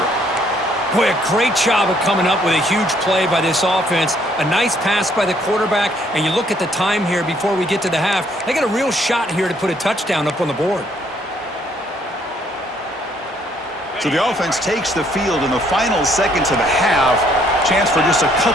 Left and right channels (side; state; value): both; normal; correlation 0.66